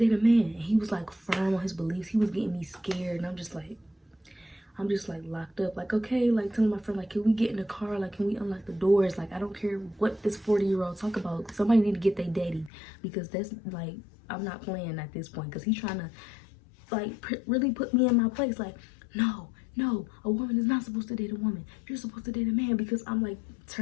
a man. And he was like firm on his beliefs. He was getting me scared. And I'm just like locked up. Like, okay, like telling my friend, like, can we get in the car? Like, can we unlock the doors? Like, I don't care what this 40-year-old talk about. Somebody need to get their daddy, because that's like, I'm not playing at this point, because he's trying to like really put me in my place. Like, no, a woman is not supposed to date a woman. You're supposed to date a man. Because I'm like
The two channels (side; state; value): right; drops out; at 12.7 s